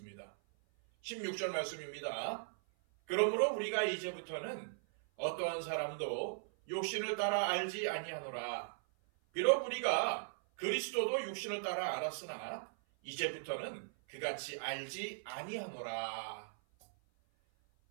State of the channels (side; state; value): left; silent; 52 dB below the other